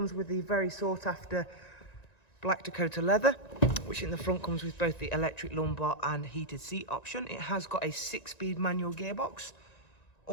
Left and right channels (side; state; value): right; late; 1.9 ms